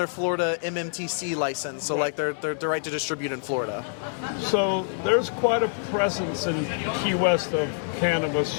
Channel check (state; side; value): silent; right; digital silence